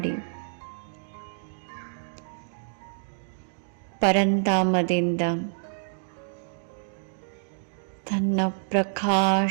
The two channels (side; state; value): left; silent; digital silence